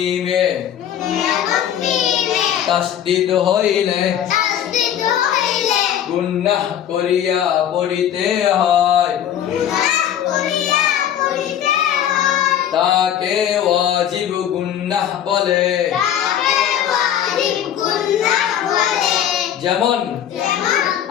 তাসদীদ হইলে গুনাহ করিয়া পড়িতে হয়, তাকে ওয়াজিব গুনাহ বলে। যেমন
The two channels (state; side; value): quieter; right; 10.1 dB